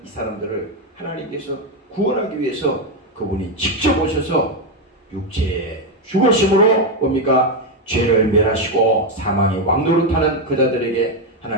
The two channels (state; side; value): normal; both; correlation 0.06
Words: 이 사람들을 하나님께서 구원하기 위해서 그분이 직접 오셔서 육체의 죽으심으로 뭡니까? 죄를 멸하시고 사망의 왕노릇하는 그 자들에게